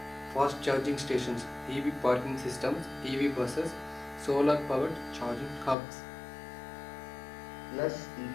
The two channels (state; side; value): drops out; right; at 5.8 s